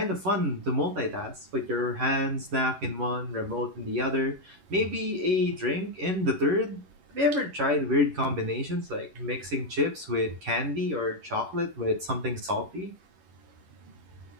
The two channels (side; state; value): left; late; 11 ms